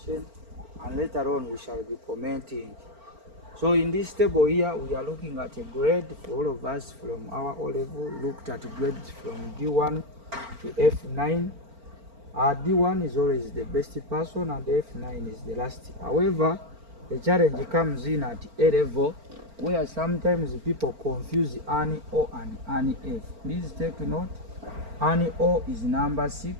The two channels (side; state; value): left; late; 4.4 ms